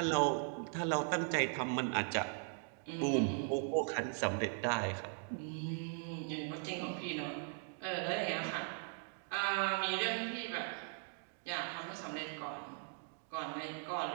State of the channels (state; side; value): silent; left; 52 dB below the other